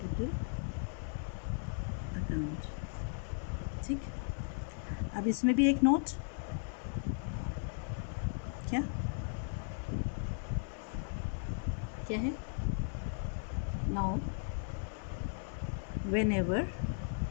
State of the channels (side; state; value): right; silent; 53 dB below the other